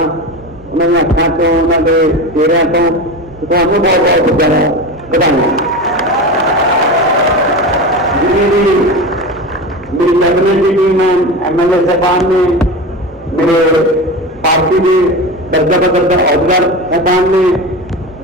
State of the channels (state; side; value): normal; both; correlation 0.26